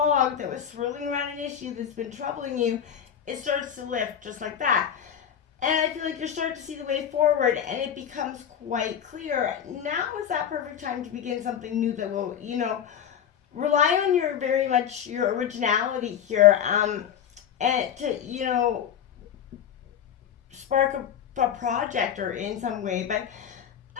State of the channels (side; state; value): right; quieter; 9.0 dB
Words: that was swirling around an issue that's been troubling you, it starts to lift just like that. And I feel like you're starting to see the way forward, and it becomes quite clear. Now is that perfect time to begin something new that will, rely on your originality here, and to spark a project or in some way. But